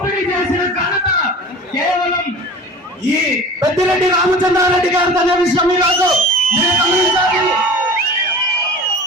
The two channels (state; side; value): normal; both; correlation 0.38